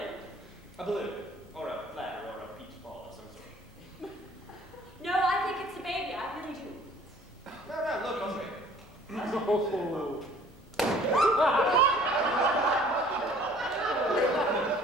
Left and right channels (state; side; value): normal; both; correlation 0.53